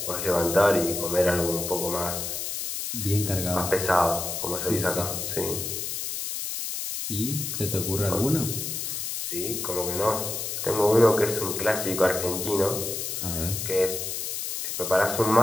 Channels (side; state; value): left; noise; hiss, 4 dB below the sound